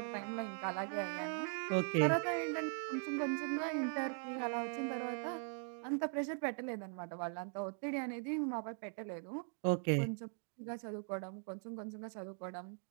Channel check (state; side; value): silent; left; 51 dB below the other